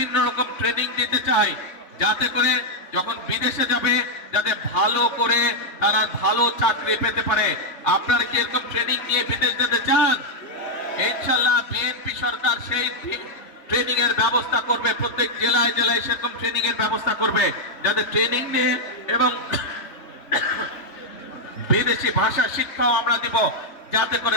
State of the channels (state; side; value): late; right; 3.4 ms